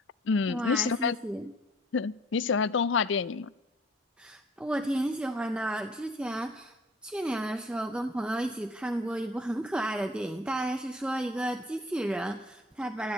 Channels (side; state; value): both; normal; correlation 0.52